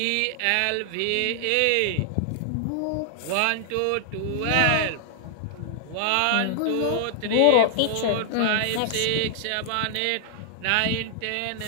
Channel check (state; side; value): different; both; correlation -0.01